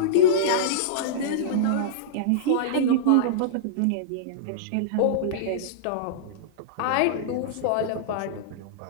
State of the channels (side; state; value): both; different; correlation -0.03